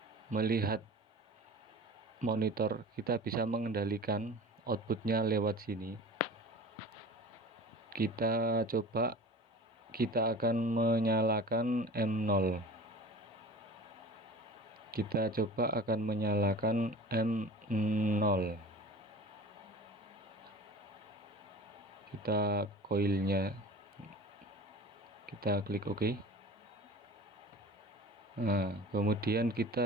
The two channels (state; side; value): normal; both; correlation 0.38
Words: melihat monitor, kita bisa mengendalikan outputnya lewat sini. Kita coba, kita akan menyalakan M0. Kita coba akan menyalakan M0. Kita coilnya, kita klik OK. Nah, kemudian